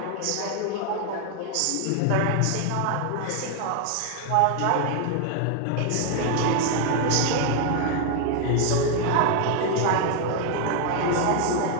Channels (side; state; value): both; different; correlation 0.00